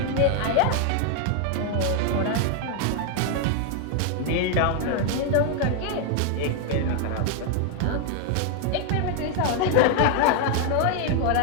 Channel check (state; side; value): different; both; correlation 0.00